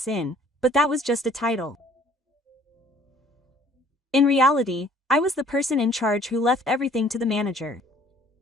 inn, but that was just a title. In reality, I was the person in charge who left everything to the manager.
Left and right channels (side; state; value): both; normal; correlation 0.56